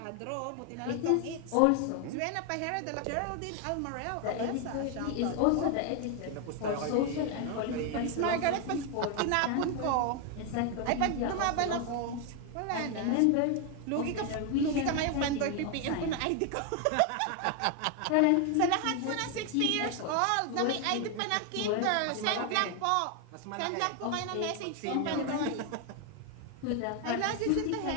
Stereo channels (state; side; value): different; both; correlation 0.01